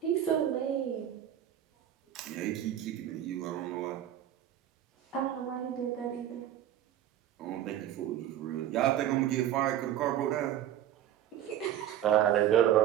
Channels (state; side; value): quieter; left; 11.2 dB